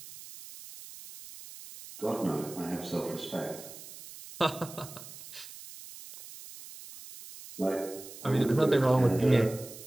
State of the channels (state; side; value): noise; right; hiss, 15 dB below the sound